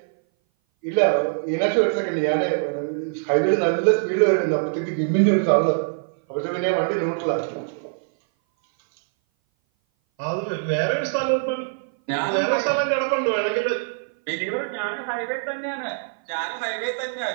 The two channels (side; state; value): left; silent; 59 dB below the other